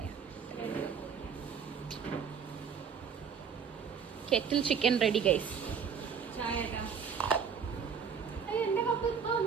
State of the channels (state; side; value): quieter; left; 6.7 dB